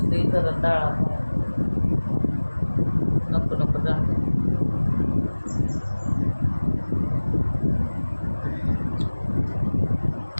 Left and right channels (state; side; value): inverted; both; correlation -1.00